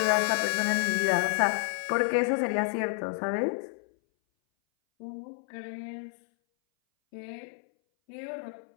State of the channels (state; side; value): silent; right; 58 dB below the other